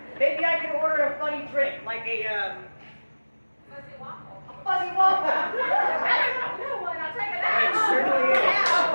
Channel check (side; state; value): both; inverted; correlation -1.00